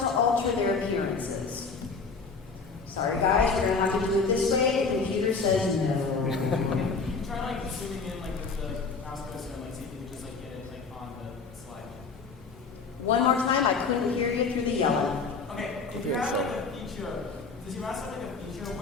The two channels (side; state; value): right; quieter; 4.6 dB